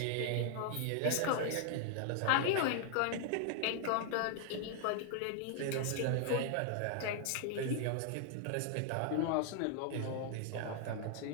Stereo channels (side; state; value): both; different; correlation 0.00